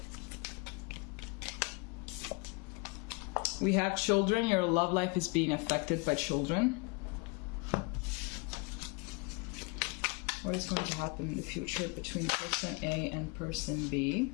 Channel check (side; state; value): right; quieter; 29.5 dB